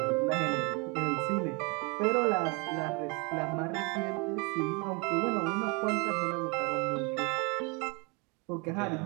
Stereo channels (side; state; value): left; quieter; 29.5 dB